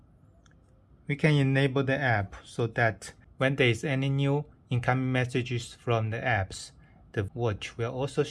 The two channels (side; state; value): both; identical; correlation 1.00